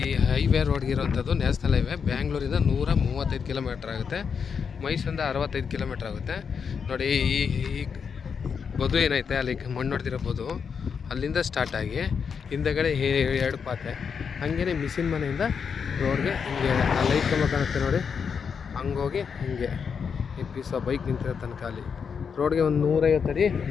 ಹೈವೇ ರೋಡ್ಗೆ ಇರೋವಂಥದ್ದು ನ್ಯಾಷನಲ್ ಹೈವೇ. ಬ್ಯಾಂಗ್ಳೂರಿಂದ 135 ಕಿಲೋಮೀಟ್ರ್ ಆಗುತ್ತೆ, ಮೈಸೂರಿಂದ 65 ಕಿಲೋಮೀಟ್ರ್ ಆಗುತ್ತೆ. ನೋಡಿ ಈ ಬದು ಏನೈತೆ ಅಲ್ಲಿ ಮಣ್ಣು ಹೊಡೆದಿರೋ ಬದು, ಅಲ್ಲಿಂದ ಸ್ಟಾರ್ಟ್ ಆಗಿ ಹಿಂದೆಗಡೆ 2 ಪಾತೆ, ಹಾಗೇ ಮಿಷಿನ್ ಮನೆಯಿಂದ ರೋಡ್ಗೆ ಹಿಂಗೆ ಆ ಲೈಟ್ ಕಂಬ ಕಾಣುತ್ತೆ ನೋಡಿ, ಹಂಗೋಗಿ ಹಿಂಗೆ ಈ ಪೀಸ ಬೈಕ್ ನಿಂತಿರೋ ತನಕ ಅಲ್ಲಿ ರೋಡ್ಗೆ ಒಂದು 150 ಅಡಿ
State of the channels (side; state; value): right; quieter; 6.4 dB